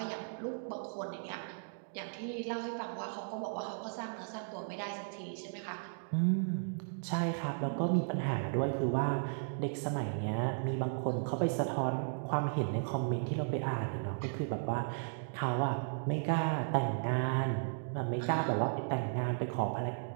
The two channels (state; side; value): silent; left; digital silence